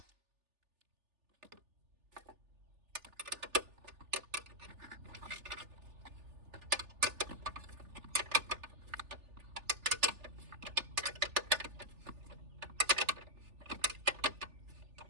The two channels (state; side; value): late; left; 3.4 ms